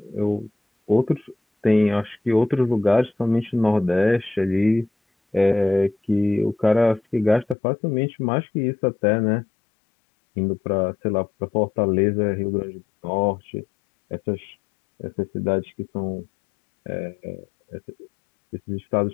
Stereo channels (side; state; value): right; drops out; at 7.6 s